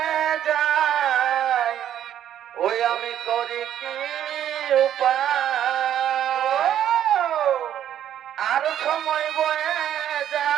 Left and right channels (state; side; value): quieter; left; 10.6 dB